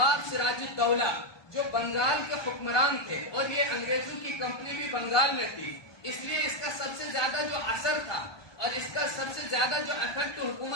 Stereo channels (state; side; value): late; right; 1.2 ms